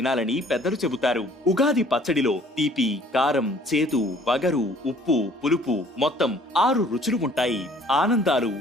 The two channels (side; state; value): both; normal; correlation 0.56